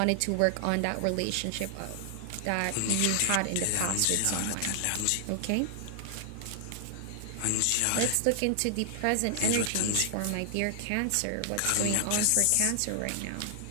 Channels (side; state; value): both; different; correlation 0.00